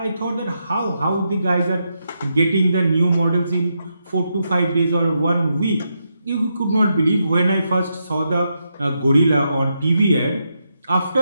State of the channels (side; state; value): both; inverted; correlation -0.83